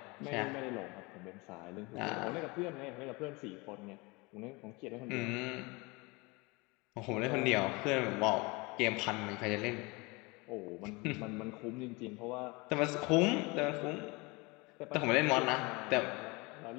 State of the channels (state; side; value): quieter; right; 26.1 dB